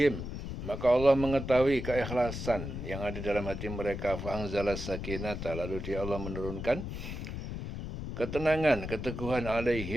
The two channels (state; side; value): noise; left; rumble, 6 dB below the sound